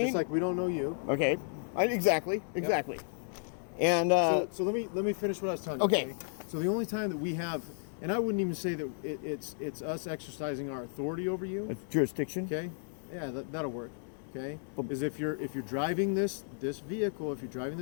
Just like we don't know you. Okay. Exactly. And So let me finish what I was telling you. Okay. So the only time that we have, and I wouldn't even say that it's us exercising our authority over you. it's jurisdiction. Okay. Yeah, that'll work. Okay. Is if you're driving this vehicle, on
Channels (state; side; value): silent; right; digital silence